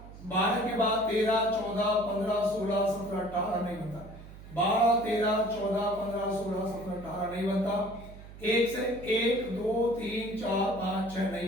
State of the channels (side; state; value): right; noise; hum, 16 dB below the sound